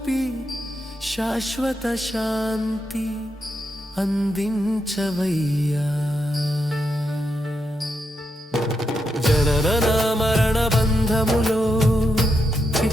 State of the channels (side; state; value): both; normal; correlation 0.83